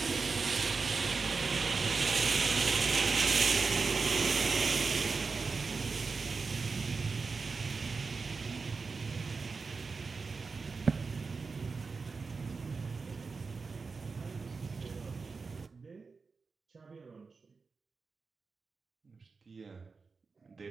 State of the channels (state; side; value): quieter; left; 4.6 dB